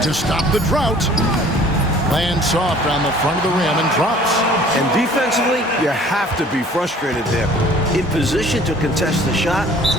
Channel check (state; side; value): normal; both; correlation 0.52